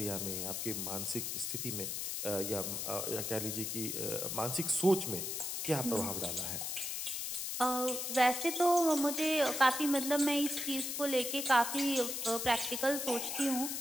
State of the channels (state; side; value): noise; left; hiss, 3 dB below the sound